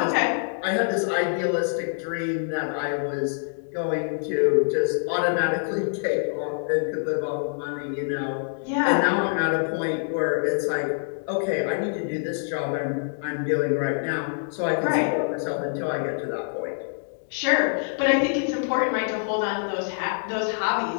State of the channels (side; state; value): right; silent; 61 dB below the other